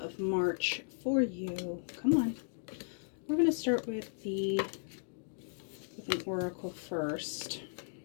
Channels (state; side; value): silent; right; digital silence